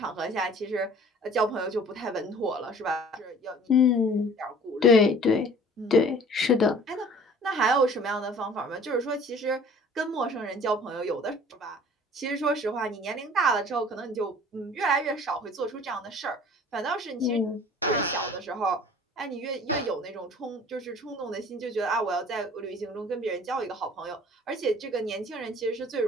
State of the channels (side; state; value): both; normal; correlation 0.49